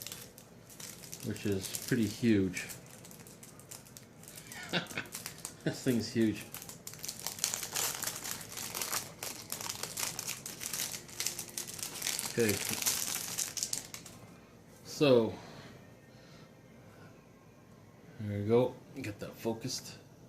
which is pretty huge. This thing's huge. Okay. So there we go. Get that focused.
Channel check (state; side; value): identical; both; correlation 1.00